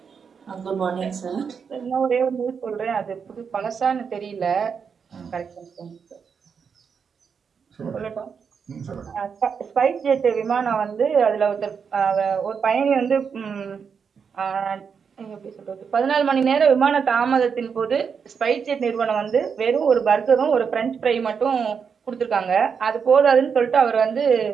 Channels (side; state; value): left; quieter; 6.4 dB